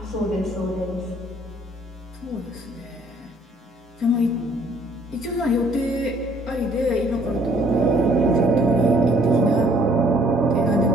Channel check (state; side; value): normal; both; correlation 0.61